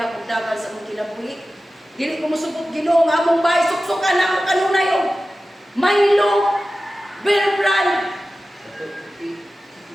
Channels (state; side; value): normal; both; correlation 0.95